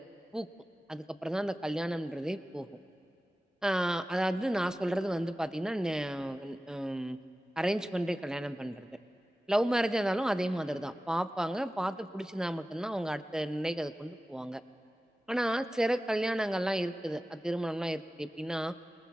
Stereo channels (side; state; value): both; normal; correlation 0.95